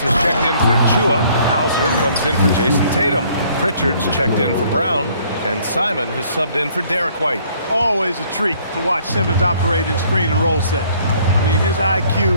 has checked in for Achua. Hauser comes in for Jason Tatum. Pritchard's checked in for Brown. And Simon has subbed in for Derek White. Always a treat to watch Simmons operate in screen and roll set. I mean, his IQ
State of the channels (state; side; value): inverted; both; correlation -0.61